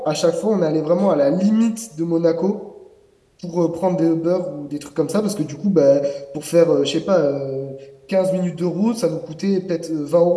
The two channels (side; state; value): both; identical; correlation 1.00